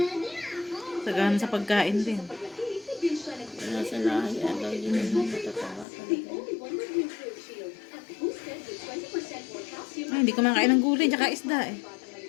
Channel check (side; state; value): right; drops out; at 5.9 s